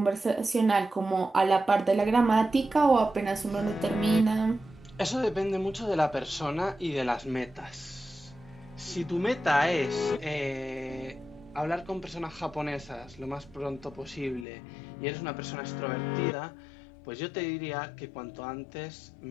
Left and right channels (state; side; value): drops out; right; at 14.5 s